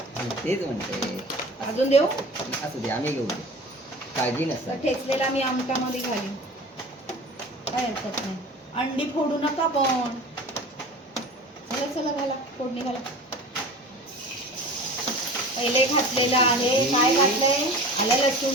तेच म्हणते. अजून देऊ? असू दे, आम्ही घेऊ. काळजी तर नसतात. ठेचलेला मी आमटामध्ये घालीन, काय हरकत नाही. अंडी फोडू नका पण. चला चला घाला, फोडणी घाला. पहिले घातलेलं आहे. काय घातलंय? आलं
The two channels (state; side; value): normal; both; correlation 0.38